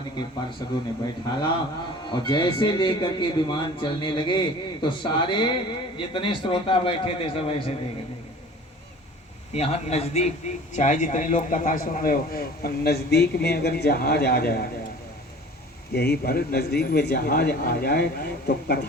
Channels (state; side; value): normal; both; correlation 0.44